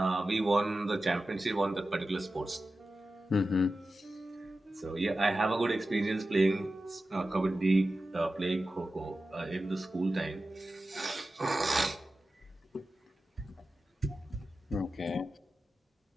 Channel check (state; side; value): normal; both; correlation 0.93